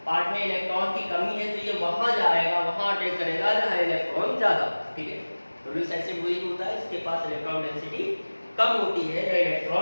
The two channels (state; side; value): inverted; both; correlation -1.00